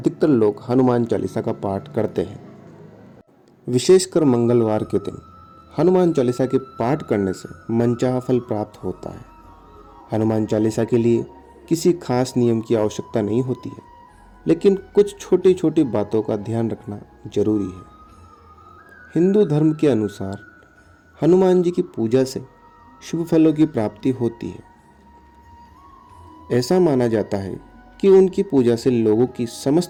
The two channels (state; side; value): identical; both; correlation 1.00